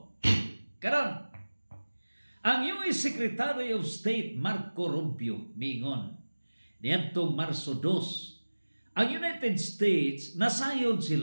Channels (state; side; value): inverted; both; correlation -1.00